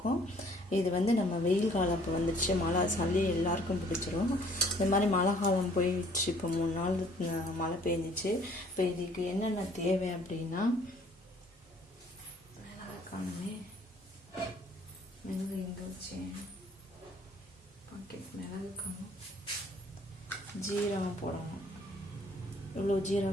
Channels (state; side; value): normal; both; correlation 0.58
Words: இது வந்து நம்ம வெயில் காலம் இப்போ வந்துடுச்சு, மழை, சளி எல்லாருக்கும் பிடிச்சிரும். இந்த மாதிரி மழை காலம் போயிடுச்சு. இப்போ 3 நாள் மழை பெஞ்சிச்சு. இப்போ இதுக்கு என்னென்ன தேவை அப்படின்னா, காணுமே மிளகு எங்கே வச்சேன், பாக்கெட் மிளகு காணும். ஜீரகம் போடணும். இவ்வளோ